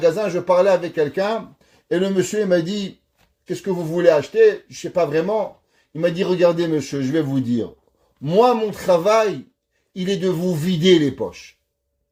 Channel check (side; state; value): both; identical; correlation 1.00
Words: je parlais avec quelqu'un, et le monsieur il m'a dit, qu'est-ce que vous voulez acheter? Je ne sais pas vraiment. Il m'a dit, regardez monsieur, je vais vous dire, moi mon travail, il est de vous vider les poches.